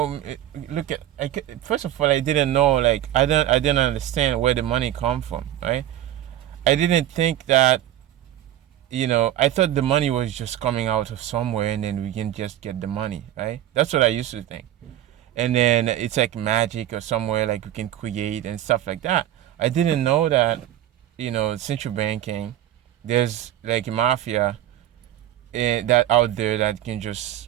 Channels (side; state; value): left; quieter; 12.6 dB